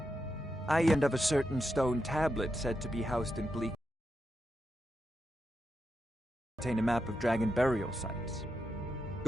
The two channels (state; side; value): normal; both; correlation 0.86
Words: I end of a certain stone tablet said to be housed in Bleak. Contain a map of dragon burial sites.